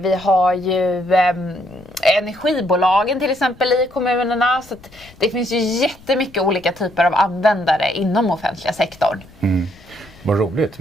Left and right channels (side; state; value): left; noise; rumble, 24 dB below the sound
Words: har ju energibolagen till exempel i kommunerna. Så att det finns ju jättemycket olika typer av användare inom offentliga sektorn. Vad roligt.